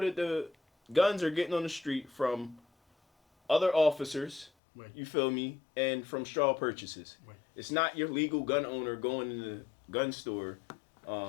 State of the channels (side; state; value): right; drops out; at 4.5 s